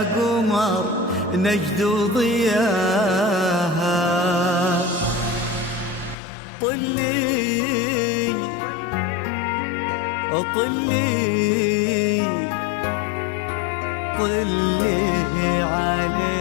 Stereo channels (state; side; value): drops out; right; at 6.2 s